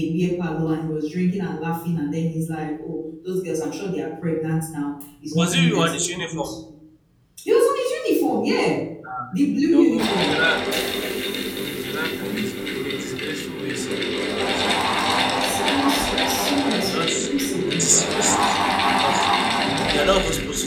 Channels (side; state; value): both; identical; correlation 1.00